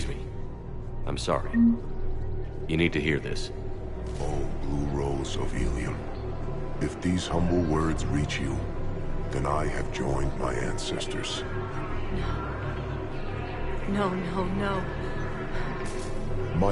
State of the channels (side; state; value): both; identical; correlation 1.00